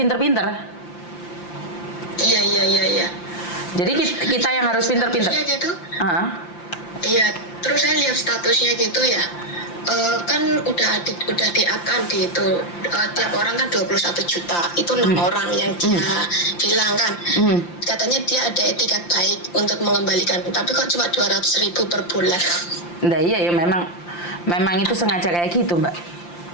Iya. Jadi kita yang harus pinter-pinter. Gitu. Iya, terus saya lihat statusnya gitu ya. Kan udah di-up kan di itu, tiap orang kan 21 juta. Itu 6 orang yang dia bilang kan. Katanya dia ada etikat baik untuk mengembalikan, tapi kok cuma 200.000 per bulan. Nah iya ya, memang itu sengaja kayak gitu, Mbak.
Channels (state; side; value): late; right; 5.8 ms